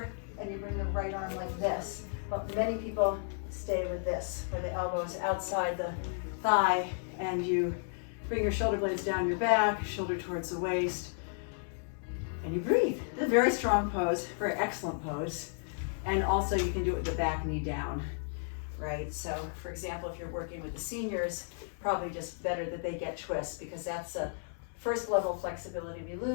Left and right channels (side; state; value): right; silent; 55 dB below the other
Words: and you bring the right arm like this. But many people stay with this, where the elbow is outside the thigh, and you bring your shoulder blades down your back, shoulder towards the waist, and you breathe. It's a very strong pose, very excellent pose. And also you can do it with the back knee down, right? So for example, if you're working with the seniors, probably just better that they get twists, because that's a first level flexibility we